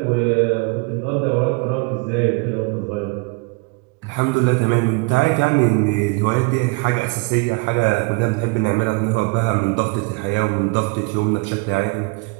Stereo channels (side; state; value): left; quieter; 27.9 dB